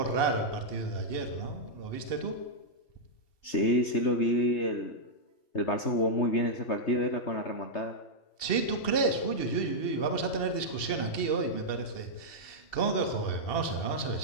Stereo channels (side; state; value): right; late; 2.7 ms